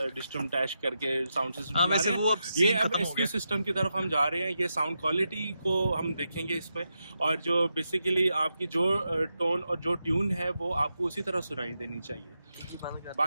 डिस्टम टैश करके साउंड सिस्टम ये अब इसके सिस्टम की तरफ हम जा रहे हैं। ये साउंड क्वालिटी को हम देखेंगे इसमें और जो बेसिकली आपकी जो टोन और जो ट्यून है वो आपको उसी तरह सुनाई देनी चाहिए।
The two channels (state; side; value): inverted; both; correlation -0.87